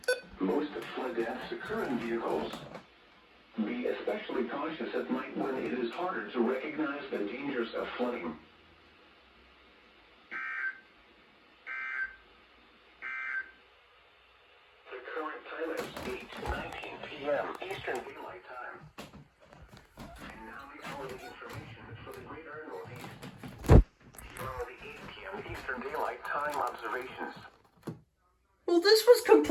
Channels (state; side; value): identical; both; correlation 1.00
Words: Most of flood deaths occur in vehicles. Be especially cautious at night when it is harder to recognize the dangers of flooding. The current time is 8:19 p.m. Eastern Daylight Time. And now the hourly information for the greater Northeast. Here are the 8 p.m. Eastern Daylight Time observations. Well, this was